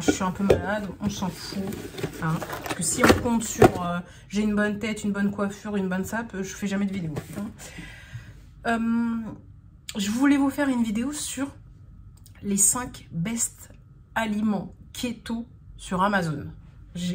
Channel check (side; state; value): both; identical; correlation 1.00